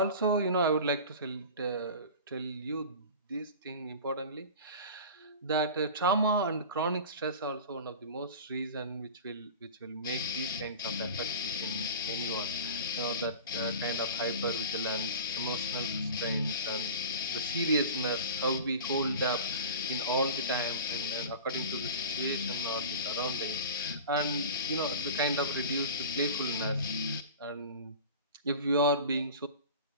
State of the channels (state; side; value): inverted; both; correlation -0.35